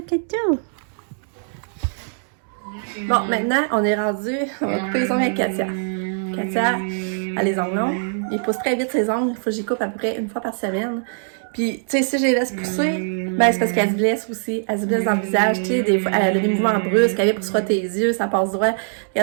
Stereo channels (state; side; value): silent; left; 64 dB below the other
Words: Katou. Bon, maintenant, on est rendu. On va couper les ongles avec Katia. Katia a les ongles longs. Il pousse très vite ses ongles. Il faut que j'y coupe à peu près une fois par semaine. Puis, tu sais, si je les laisse pousser, ben c'est parce qu'elle se blesse aussi. Elle se blesse dans le visage. Tu sais, des fois, elle a des mouvements brusques. Elle vient pour se frotter les yeux, ça passe droit. Et